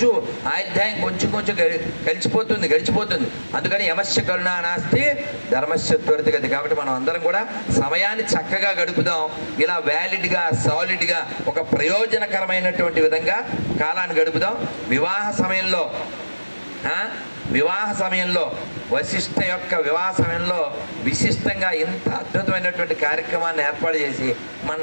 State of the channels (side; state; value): both; inverted; correlation -1.00